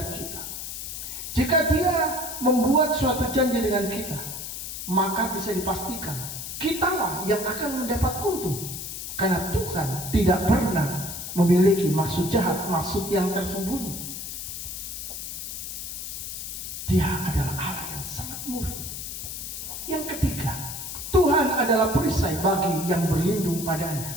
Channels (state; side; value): noise; left; hiss, 7 dB below the sound